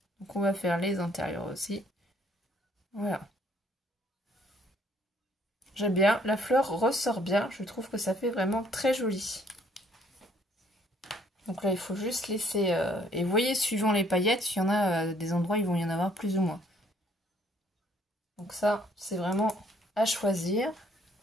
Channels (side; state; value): both; normal; correlation 0.63